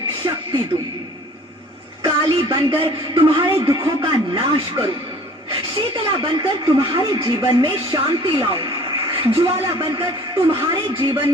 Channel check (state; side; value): normal; both; correlation 0.50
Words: शक्ति दूं, काली बनकर तुम्हारे दुखों का नाश करूं, शीतला बनकर तुम्हारे जीवन में शांति लाऊं, ज्वाला बनकर तुम्हारे जीवन